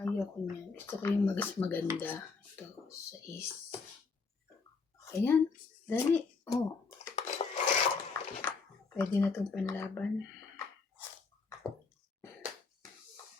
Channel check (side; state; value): right; quieter; 4.6 dB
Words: Ayoko niyan. Gusto ko yung maganda. Ito, 6. Ayan. Dali. Oh. Pwede na itong panlaban.